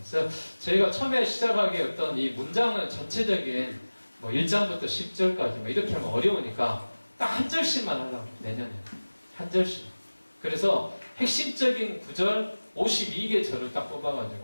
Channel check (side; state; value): both; inverted; correlation -1.00